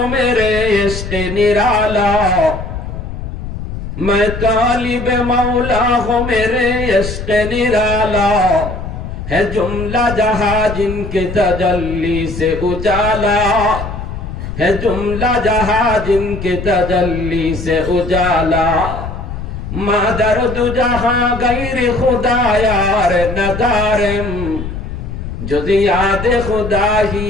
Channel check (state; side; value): noise; left; rumble, 7 dB below the sound